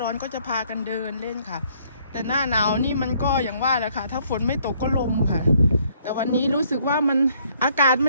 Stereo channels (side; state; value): both; inverted; correlation -0.65